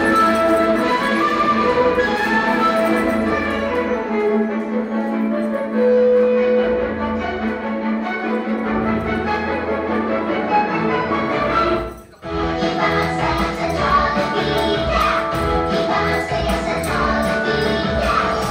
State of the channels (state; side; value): identical; both; correlation 1.00